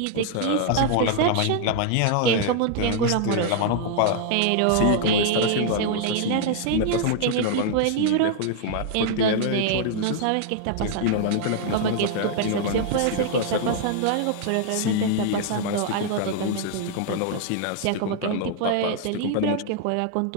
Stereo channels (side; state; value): both; different; correlation -0.01